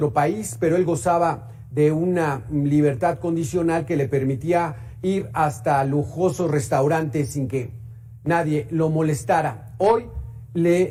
país, pero él gozaba de una libertad condicional que le permitía ir hasta lujosos restaurantes sin que nadie lo molestara. Hoy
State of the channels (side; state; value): both; identical; correlation 1.00